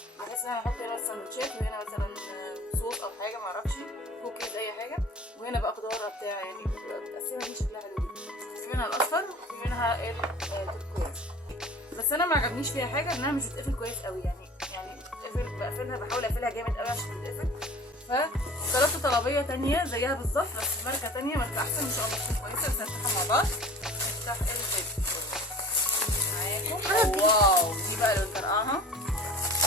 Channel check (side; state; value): both; normal; correlation 0.43